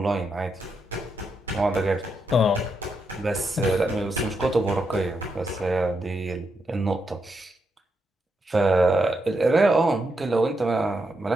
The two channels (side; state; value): both; normal; correlation 0.82